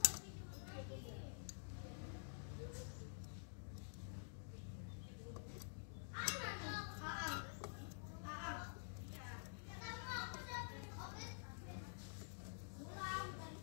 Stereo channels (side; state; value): right; silent; digital silence